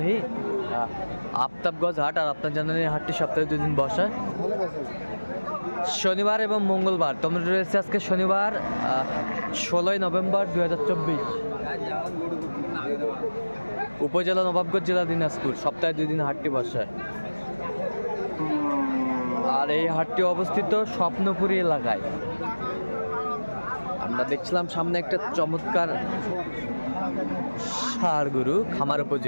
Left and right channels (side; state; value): both; inverted; correlation -1.00